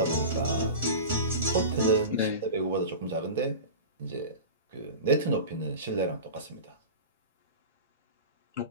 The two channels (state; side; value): inverted; both; correlation -0.31